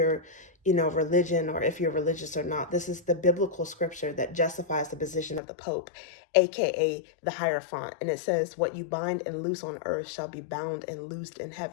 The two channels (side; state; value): right; drops out; at 5.4 s